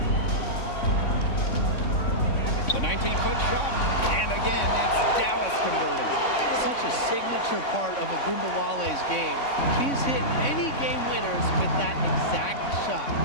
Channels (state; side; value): late; right; 3.6 ms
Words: The 19-foot shot, and again, it's Dallas converting. Such a signature part of Ogunbowale's game. She's hit many game winners with that exact shot.